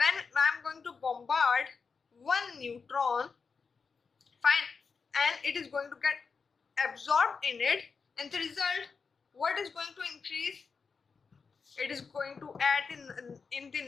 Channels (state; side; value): quieter; right; 5.2 dB